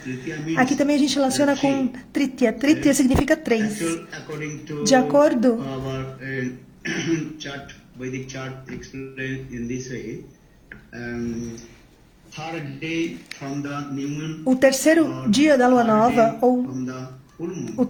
Aqui também a gente relaciona com Tritiya. Tritiya significa três. De acordo Vedic chart explained in this way. O terceiro dia da lua nova, ou o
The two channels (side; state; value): both; identical; correlation 1.00